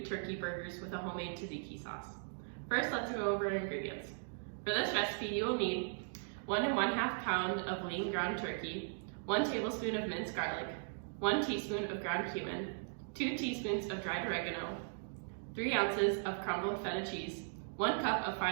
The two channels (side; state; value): left; silent; digital silence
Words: turkey burgers with a homemade tzatziki sauce. First, let's go over our ingredients. For this recipe, you will need 1 1/2 pound of lean ground turkey, 1 tablespoon of minced garlic, 1 teaspoon of ground cumin, 2 teaspoons of dried oregano, 3 ounces of crumbled feta cheese, 1 cup of